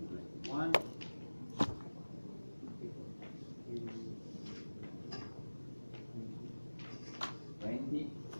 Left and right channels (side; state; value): both; inverted; correlation -1.00